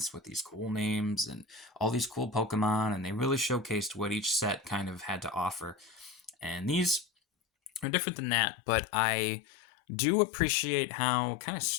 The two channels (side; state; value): right; drops out; at 7.9 s